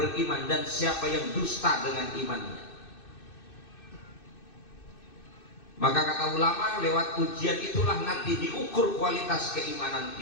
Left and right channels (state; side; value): late; right; 2.6 ms